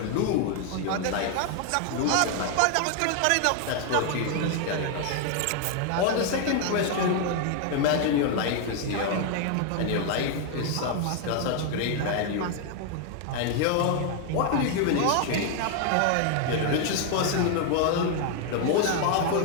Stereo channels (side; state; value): both; different; correlation 0.00